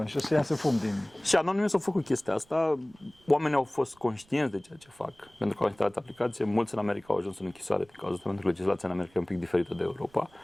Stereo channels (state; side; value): noise; right; rumble, 30 dB below the sound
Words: și o să iasă fum din... Și Anonymous a făcut chestia asta, oamenii au fost conștienți de ceea ce fac, pentru că au instalat aplicație, mulți în America au ajuns în închisoare din cauza asta, pentru că legislația în America e un pic diferită de Europa.